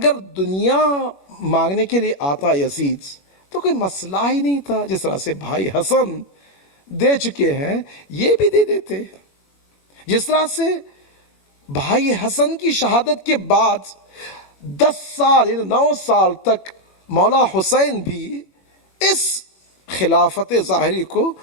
دنیا مانگنے کے لیے آتا یزید تو کوئی مسئلہ ہی نہیں تھا، جس طرح سے بھائی حسن دے چکے ہیں یہ بھی دے دیتے، جس طرح سے بھائی حسن کی شہادت کے بعد 10 سال یعنی 9 سال تک مولا حسین بھی اس خلافت ظاہری کو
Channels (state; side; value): late; right; 21 ms